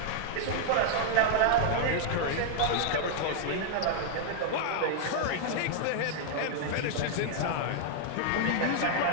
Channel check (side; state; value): both; different; correlation 0.00